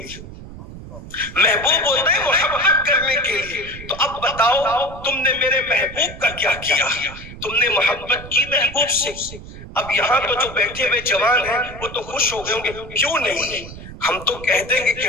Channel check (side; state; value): right; noise; rumble, 14 dB below the sound